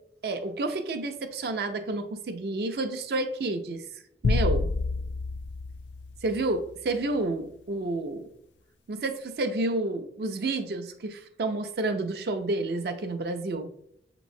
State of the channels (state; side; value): normal; both; correlation 0.39